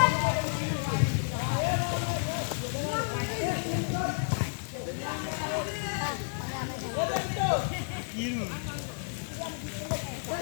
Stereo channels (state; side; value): silent; right; digital silence